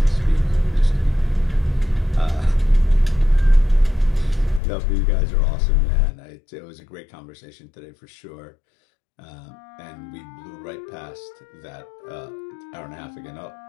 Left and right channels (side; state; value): right; drops out; at 4.6 s